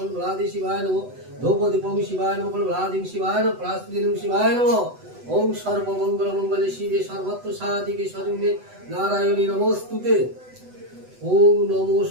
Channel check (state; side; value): late; left; 8.0 ms